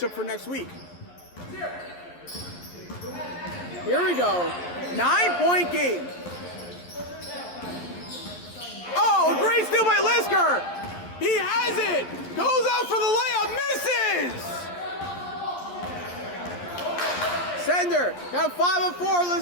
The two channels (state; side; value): late; right; 11 ms